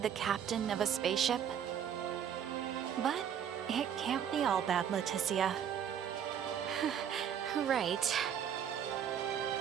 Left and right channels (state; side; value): quieter; left; 8.8 dB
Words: the captain of a spaceship. But it can't be all bad, Leticia. Right.